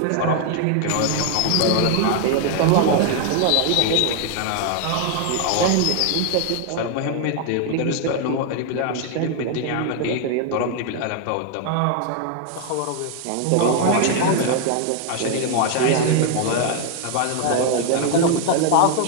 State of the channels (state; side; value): different; both; correlation 0.00